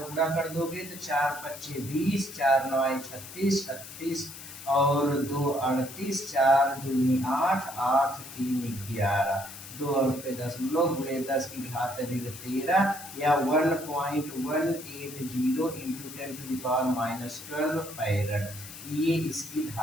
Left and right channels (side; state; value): left; noise; hiss, 13 dB below the sound